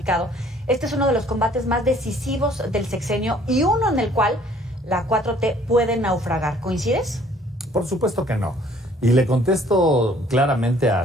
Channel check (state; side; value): normal; both; correlation 0.58